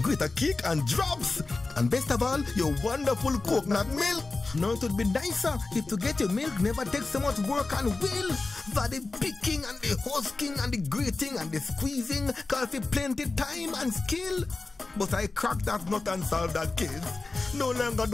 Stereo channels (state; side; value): quieter; right; 3.5 dB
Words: greater cake and drops. And best of all, your wonderful coconut milk. Now it would be nicer if to get your milk never takes so much work and will. For the picking and the husking and the grating and the squeezing, call for plenty time and skill. But I cracked that nut and solved that case. No longer